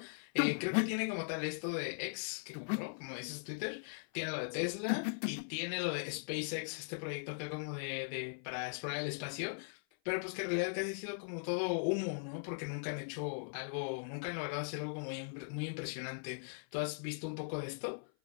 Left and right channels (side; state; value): right; silent; 51 dB below the other